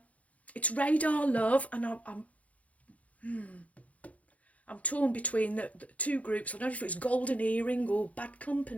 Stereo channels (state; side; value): late; right; 0.067 ms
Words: It's Radar Love, and I'm torn between the two groups. I don't know if it's Golden Earring or Bad